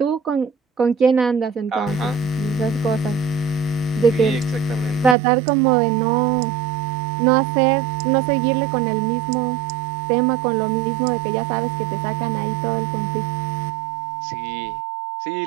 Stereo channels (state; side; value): drops out; left; at 5.2 s